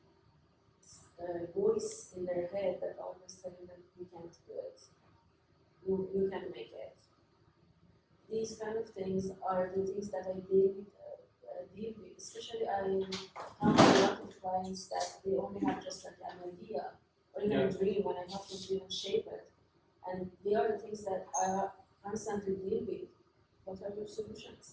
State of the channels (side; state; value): both; identical; correlation 1.00